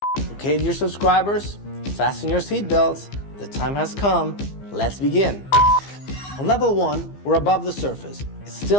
Okay, dear subscribers, fasten your seatbelts. The time has come. Let's begin. On level 1, we're above the surface. It's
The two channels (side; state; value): right; late; 15 ms